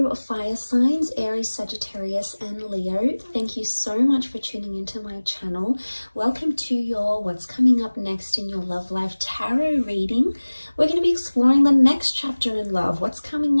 fire signs, Aries, Sagittarius, and Leo. Thank you so much for tuning into my channel. Welcome to your What's Coming Up Next in Your Love Life Tarot reading. We're going to be exploring the next chapter in love. What's coming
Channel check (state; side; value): inverted; both; correlation -1.00